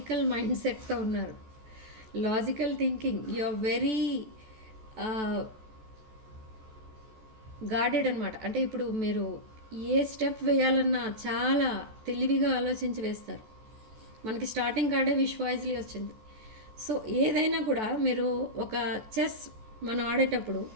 మైండ్ సెట్తో ఉన్నారు. Logical thinking, you are very guarded అనమాట. అంటే ఇప్పుడు మీరు ఏ స్టెప్ వేయాలన్నా చాలా తెలివిగా ఆలోచించి వేస్తారు. మనకి స్టార్టింగ్ కార్డే విష్ వాయిస్లీ వచ్చింది. సో ఏదైనా కూడా మీరు ఒక చెస్ మనం ఆడేటప్పుడు,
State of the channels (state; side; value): late; left; 14 ms